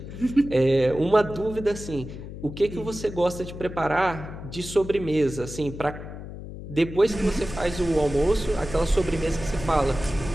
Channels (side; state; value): left; noise; hum, 11 dB below the sound